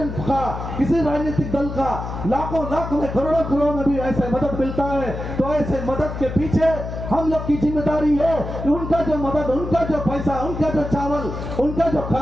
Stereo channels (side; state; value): left; noise; hum, 7 dB below the sound